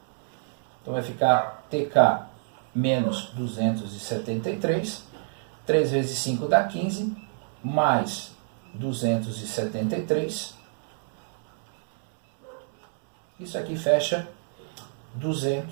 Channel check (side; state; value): left; silent; digital silence